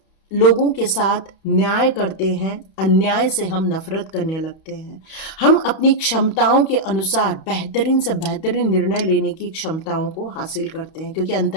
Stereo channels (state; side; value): late; right; 31 ms